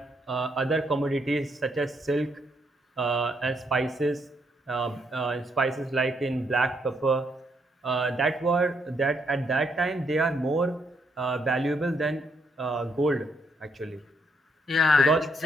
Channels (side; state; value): both; normal; correlation 0.75